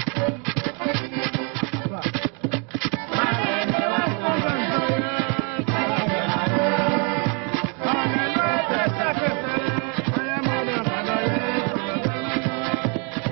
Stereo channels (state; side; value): quieter; left; 32.1 dB